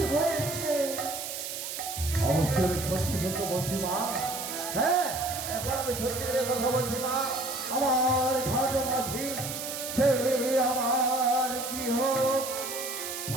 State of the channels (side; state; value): right; noise; hiss, 6 dB below the sound